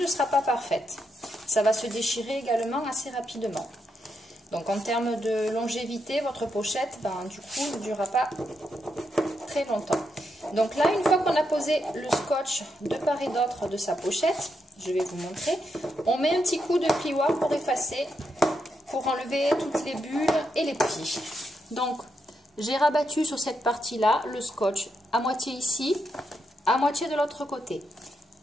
sera pas parfaite. Ça va se déchirer également assez rapidement. Donc en termes de longévité, votre pochette, du coup, ne durera pas très longtemps. Donc là, une fois qu'on a posé le scotch de part et d'autre de sa pochette, je vais vous montrer, on met un petit coup de plioir pour effacer, pour enlever toutes les bulles et les plis. Donc, j'ai rabattu sur cette partie-là le scotch à moitié ici, à moitié de l'autre côté.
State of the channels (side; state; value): both; normal; correlation 0.82